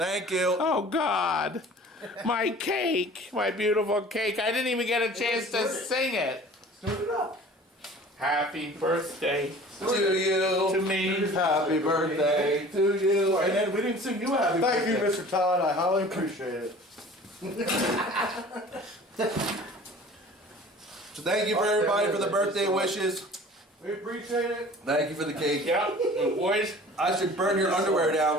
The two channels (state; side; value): normal; both; correlation 0.45